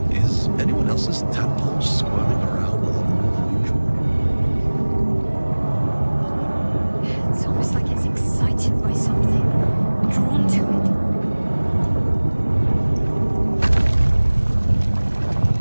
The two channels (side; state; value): both; inverted; correlation -1.00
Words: Is anyone else's tadpole squirming around a lot more than usual? It's almost like it's excited by something, drawn to it.